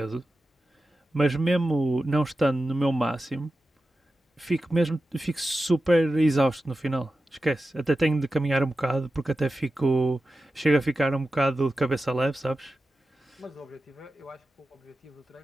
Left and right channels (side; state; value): both; normal; correlation 0.93